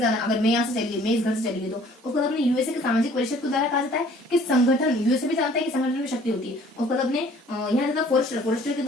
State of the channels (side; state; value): both; normal; correlation 0.55